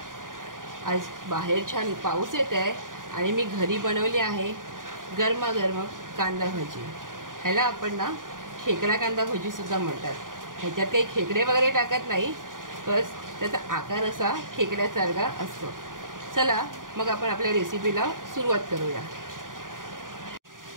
आज बाहेर छान पाऊस येत आहे आणि मी घरी बनवली आहे गरमागरम कांदा भजी। ह्याला आपण ना खेकडा कांदा भजी सुद्धा म्हणतात। ह्याच्यात काही खेकडे वगैरे टाकत नाही, बस त्याचा आकार असा खेकड्यासारखा असतो। चला मग आपण आपल्या रेसिपीला सुरुवात करूया।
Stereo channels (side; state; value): left; late; 0.89 ms